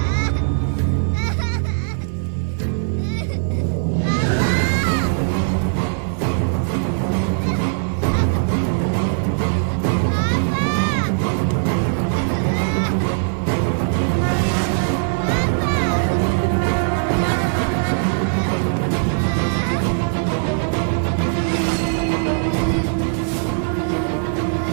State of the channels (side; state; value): left; silent; 56 dB below the other